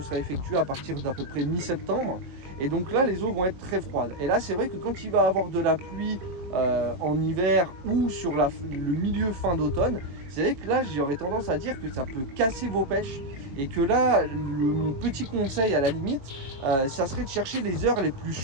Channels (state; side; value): late; left; 22 ms